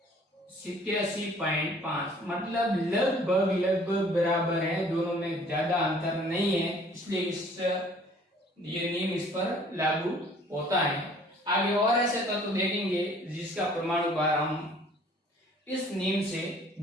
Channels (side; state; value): both; normal; correlation 0.55